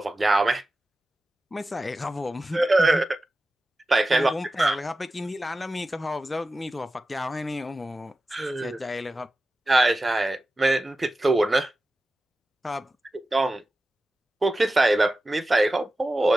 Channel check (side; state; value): both; normal; correlation 0.93